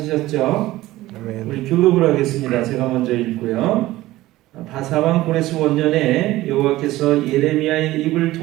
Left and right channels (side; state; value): left; quieter; 16.9 dB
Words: 우리 교독을 하겠습니다. 제가 먼저 읽고요. 바사왕 고레스 원년에 여호와께서 예레미야의 입을